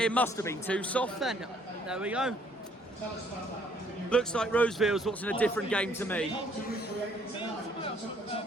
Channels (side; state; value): both; normal; correlation 0.64